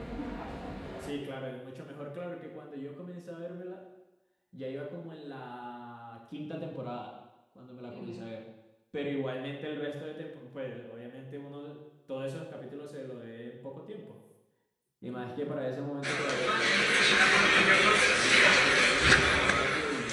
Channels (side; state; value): both; identical; correlation 1.00